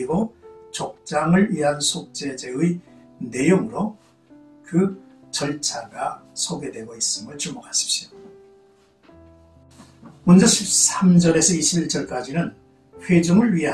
족장을 위한 속죄제의 내용으로 그 절차가 소개되고 있음을 주목하십시오. 먼저 13절에서 21절까지는 회중을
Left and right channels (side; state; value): both; identical; correlation 1.00